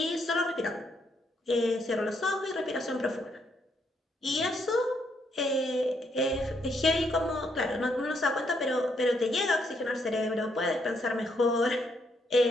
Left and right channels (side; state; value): both; normal; correlation 0.75